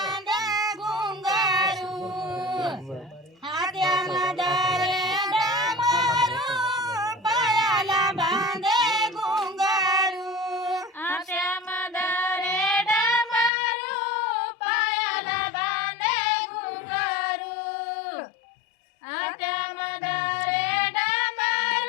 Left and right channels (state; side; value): drops out; right; at 13.5 s